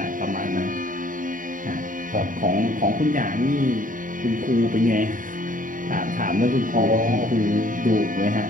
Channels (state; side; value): late; left; 0.39 ms